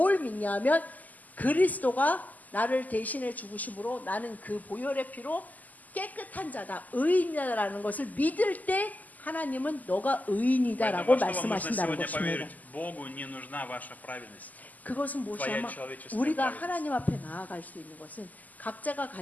믿냐면 그리스도가 나를 대신해 죽으심으로 나는 그 보혈의 피로 깨끗한 자다 의인이다라는 것을 믿을 때 하나님은 너가 의인이다라고 Поэтому, что вам нужно 말씀하신다는 сегодня 것입니다. поверить? Богу не нужна ваша праведность. 그것은 무엇이냐면 человеческая 우리가 праведность. 하나님 앞에 나아갈 수 있는 것은 각자가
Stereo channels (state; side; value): late; right; 0.080 ms